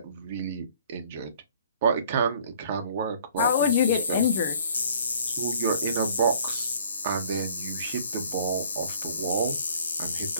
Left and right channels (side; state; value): both; inverted; correlation -0.55